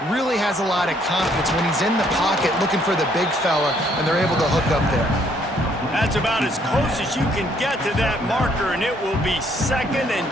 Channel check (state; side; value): normal; both; correlation 0.67